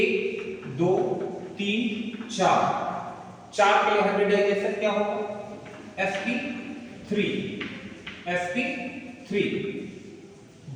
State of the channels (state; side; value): identical; both; correlation 1.00